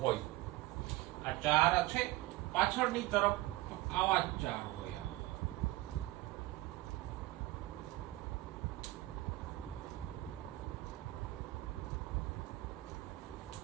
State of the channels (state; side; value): quieter; left; 18.4 dB